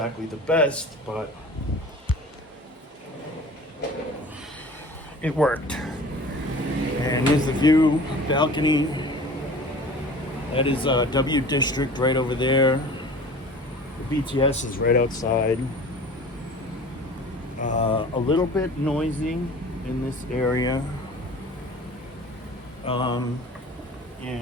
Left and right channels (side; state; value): both; normal; correlation 0.42